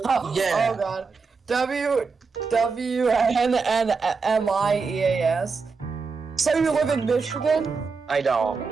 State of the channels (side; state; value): left; quieter; 4.8 dB